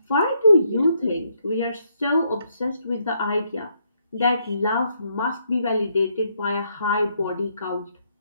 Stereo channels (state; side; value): inverted; both; correlation -0.74